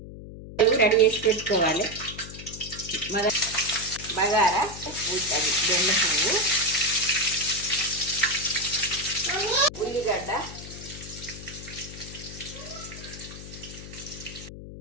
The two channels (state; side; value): noise; left; hum, 13 dB below the sound